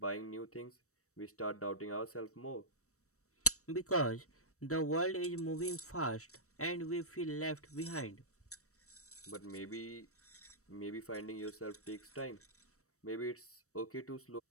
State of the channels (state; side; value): late; right; 0.65 ms